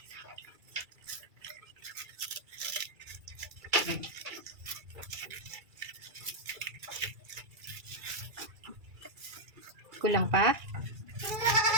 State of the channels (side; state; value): left; late; 2.3 ms